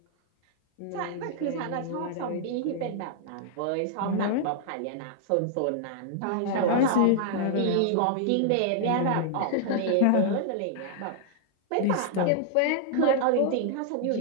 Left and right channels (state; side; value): different; both; correlation -0.01